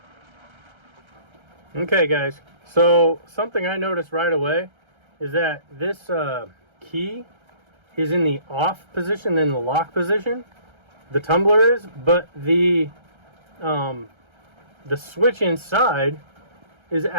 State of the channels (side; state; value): left; late; 1.3 ms